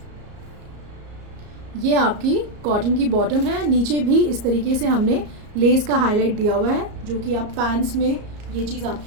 ये आपकी कॉटन की बॉटम है. नीचे भी इस तरीके से हमने लेस का हाईलाइट दिया हुआ है जो कि आप पैंट्स में ये चीज़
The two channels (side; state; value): left; late; 34 ms